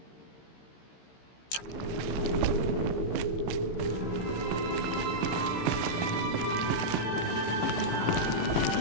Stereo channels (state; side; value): late; right; 16 ms